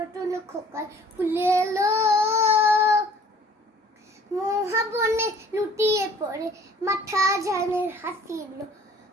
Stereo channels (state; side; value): normal; both; correlation 0.53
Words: খোকার ফুলে এলো, মহাবনে লুটিয়ে পড়ে মাথা ঝানের হাসিলো,